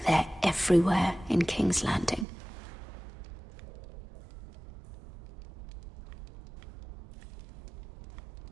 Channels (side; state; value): left; drops out; at 2.2 s